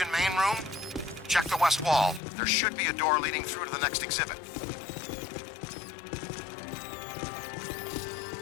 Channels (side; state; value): right; drops out; at 2.2 s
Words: main room? Check the west wall. There should be a door leading through to the next exhibit.